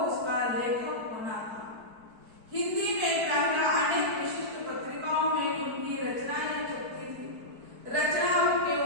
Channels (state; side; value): late; left; 4.6 ms